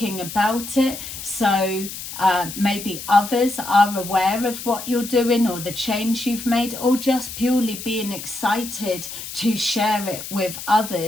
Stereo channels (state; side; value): noise; left; hiss, 10 dB below the sound